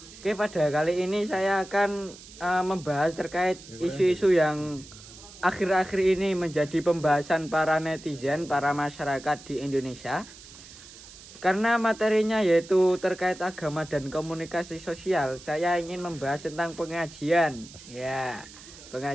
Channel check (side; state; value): right; noise; hiss, 18 dB below the sound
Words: Oke, pada kali ini saya akan membahas terkait isu-isu yang akhir-akhir ini menjadi pembahasan para netizen, para masyarakat di Indonesia. Karena materinya yaitu terkait agama dan komunikasi sosial, saya ingin membahas tentang pengajian. Ya,